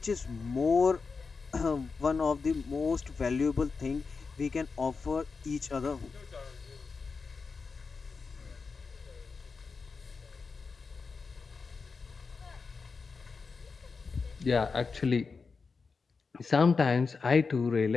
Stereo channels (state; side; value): quieter; right; 4.7 dB